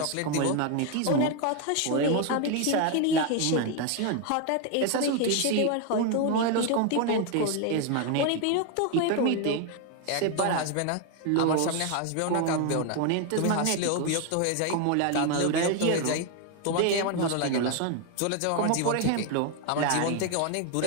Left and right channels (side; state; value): both; different; correlation 0.01